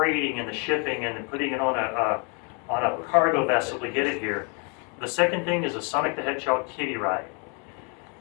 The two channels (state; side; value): quieter; right; 35.6 dB